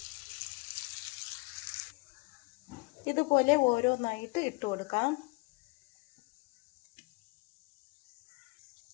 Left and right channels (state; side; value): quieter; right; 27.4 dB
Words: ഇതുപോലെ ഓരോന്നായിട്ട് ഇട്ട് കൊടുക്കാം.